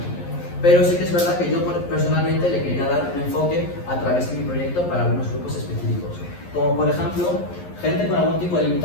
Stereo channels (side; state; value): right; late; 11 ms